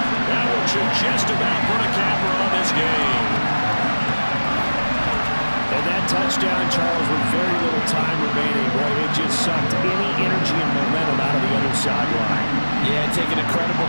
one should just about put a capper on this game. And that touchdown, Charles, with very little time remaining, boy, it just sucked any energy and momentum out of the other sideline. Yeah, taking a credible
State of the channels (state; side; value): inverted; both; correlation -1.00